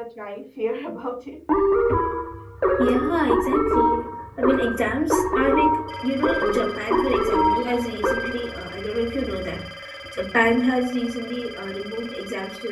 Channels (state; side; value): identical; both; correlation 1.00